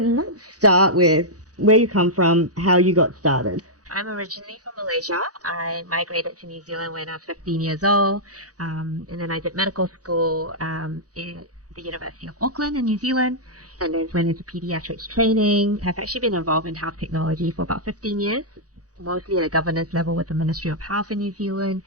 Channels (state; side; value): late; left; 0.67 ms